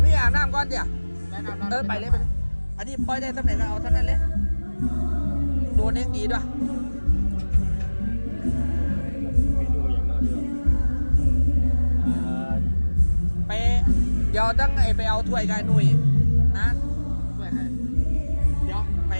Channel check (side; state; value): both; inverted; correlation -1.00